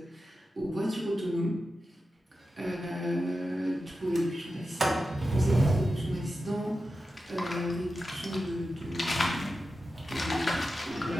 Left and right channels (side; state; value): both; normal; correlation 0.91